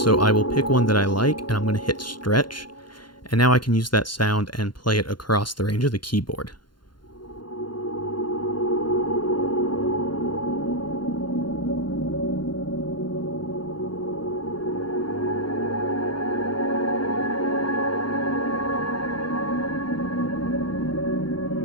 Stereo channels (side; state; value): right; late; 0.71 ms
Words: I will pick one that I like, and I'm going to hit stretch, and now I can use that sound and play it across the range of the keyboard.